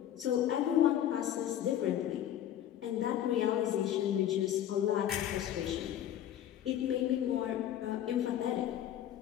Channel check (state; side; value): quieter; right; 11.2 dB